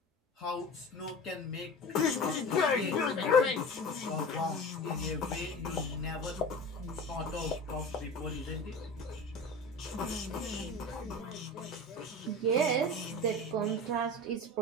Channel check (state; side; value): normal; both; correlation 0.33